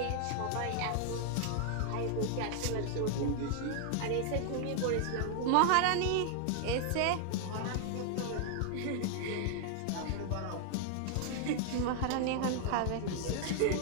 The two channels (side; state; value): both; different; correlation 0.00